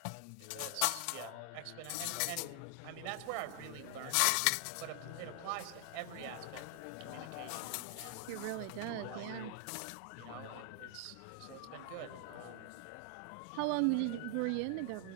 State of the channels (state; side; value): different; both; correlation 0.00